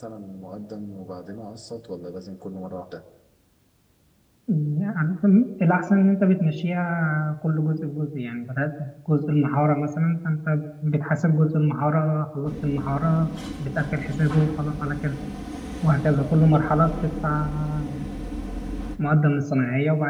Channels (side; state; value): both; identical; correlation 1.00